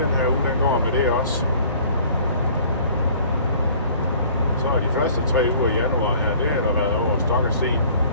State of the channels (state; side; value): inverted; both; correlation -0.51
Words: den her uge, den går med det også. Så er de første 3 uger i januar her, det har der været over stok og sten.